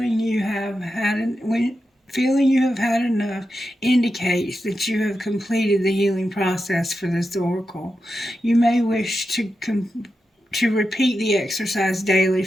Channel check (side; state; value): both; normal; correlation 0.89